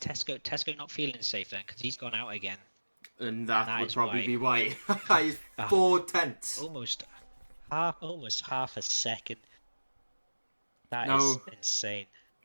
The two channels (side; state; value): both; inverted; correlation -1.00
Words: not feeling safe then? Because he's gone out again. And that would probably be why. He's 4 tenths. Almost half a second. That is insane.